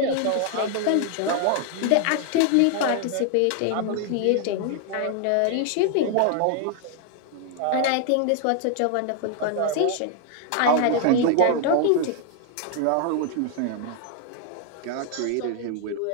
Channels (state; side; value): different; both; correlation 0.00